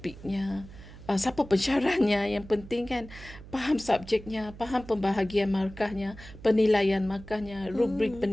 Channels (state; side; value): noise; right; hum, 17 dB below the sound